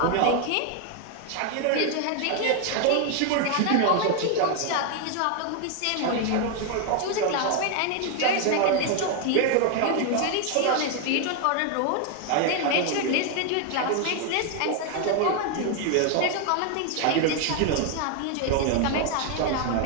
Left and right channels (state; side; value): different; both; correlation 0.01